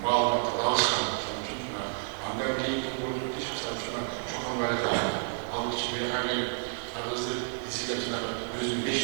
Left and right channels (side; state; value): left; silent; 58 dB below the other